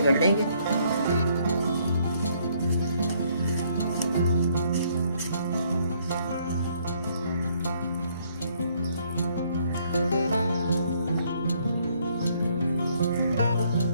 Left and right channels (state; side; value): inverted; both; correlation -0.67